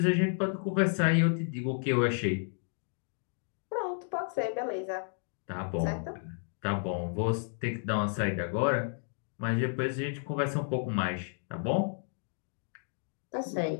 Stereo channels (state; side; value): silent; right; 56 dB below the other